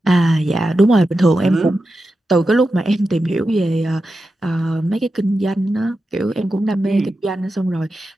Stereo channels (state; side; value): normal; both; correlation 0.90